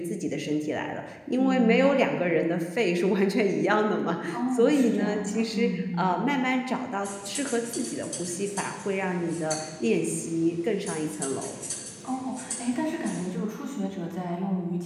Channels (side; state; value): both; identical; correlation 1.00